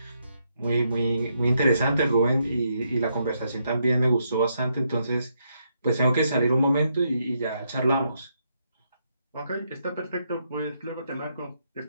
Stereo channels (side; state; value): both; inverted; correlation -0.78